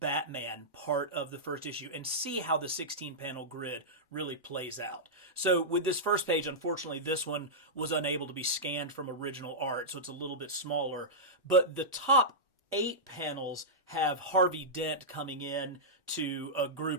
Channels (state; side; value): normal; both; correlation -0.12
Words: part of the first issue and see how the 16-panel grid really plays out. So with this first page, unfortunately, this one was unable to be scanned from original art, so it's a little bit smaller. But the top 8 panels have Harvey Dent coming in to a